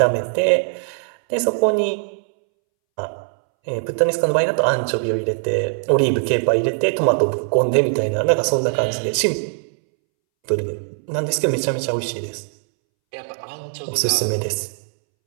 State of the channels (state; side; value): silent; left; 64 dB below the other